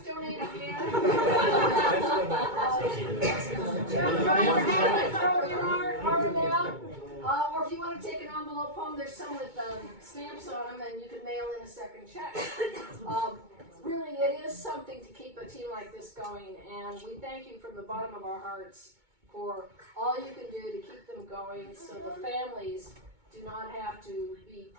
again. Jeff Ryder had to throw in our amount. Or if you want to take an envelope home, there's some with stamps on them, and you can mail in a second check. Really, it is something to keep a team like this going, and we thank you from the bottom of our hearts for all you can do to keep them going so the families do not have to be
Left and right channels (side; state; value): left; late; 2.2 ms